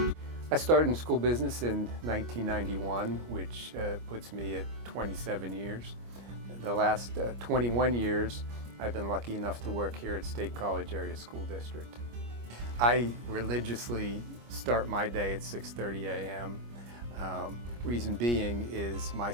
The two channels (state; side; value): late; left; 25 ms